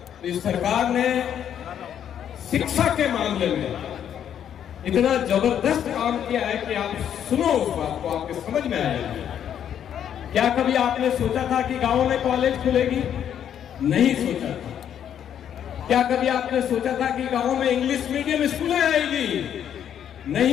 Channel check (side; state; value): right; quieter; 9.4 dB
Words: तो इस सरकार ने शिक्षा के मामले में इतना जबरदस्त काम किया है कि आप सुनो उस बात को, आपके समझ में आएगा। क्या कभी आपने सोचा था कि गांव में कॉलेज खुलेगी? नहीं सोचा था। क्या कभी आपने सोचा था कि गांव में इंग्लिश मीडियम स्कूलें आएगी?